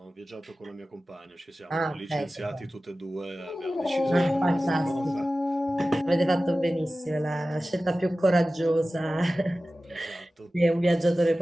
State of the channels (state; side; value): normal; both; correlation 0.96